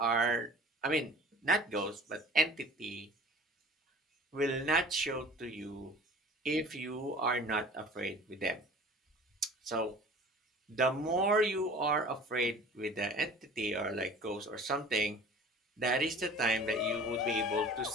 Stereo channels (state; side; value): normal; both; correlation 0.44